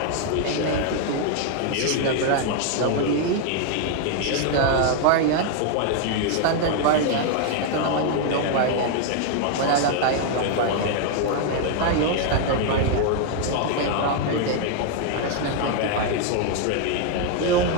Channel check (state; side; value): different; both; correlation 0.00